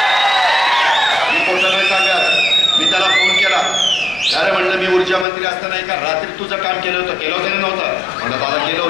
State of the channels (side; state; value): right; drops out; at 5.2 s